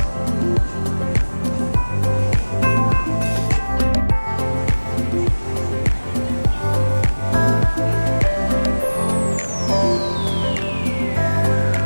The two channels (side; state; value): both; inverted; correlation -1.00